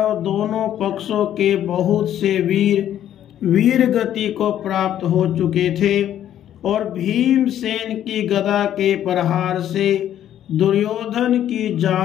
दोनों पक्षों के बहुत से वीर गति को प्राप्त हो चुके थे और भीमसेन की गदा के प्रहार से दुर्योधन की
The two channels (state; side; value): quieter; right; 11.1 dB